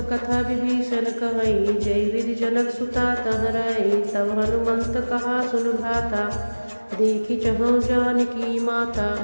कथा विभीषण कहई जय विधि जनक सुता तह रही। तब हनुमंत कहा सुन भ्राता देखी चहु जानकी माता।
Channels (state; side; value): inverted; both; correlation -1.00